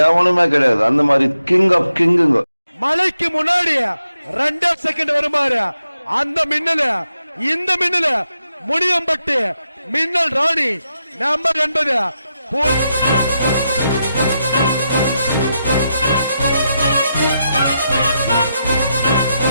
எவனுமே கிடையாது. அந்த மாதிரி கிங் ஆஃப் கிங்குங்க. மலைக்கு முன்னாடி 2 செகண்ட் வருமாறு அந்த மின்னல இந்த மின்னல முனியம்பட்டு மின்னல் ராணி நம்பர் 80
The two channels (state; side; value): inverted; both; correlation -0.85